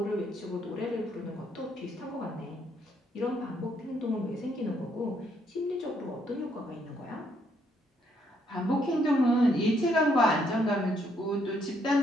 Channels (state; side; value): normal; both; correlation 0.72